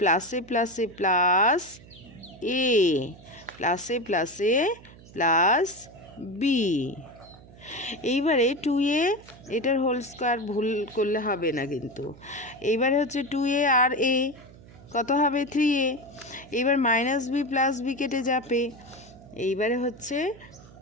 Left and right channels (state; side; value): noise; right; hum, 21 dB below the sound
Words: প্লাসে প্লাস এ, প্লাসে প্লাসে প্লাস বি। এইবারে 2a এটার হোল স্কোয়ার ভুল করলে হবে না কিন্তু। এইবারে হচ্ছে 2a আর a কত হবে? 3a। এইবার মাইনাস বি প্লাস বি কেটে যাবে। এইবারে হচ্ছে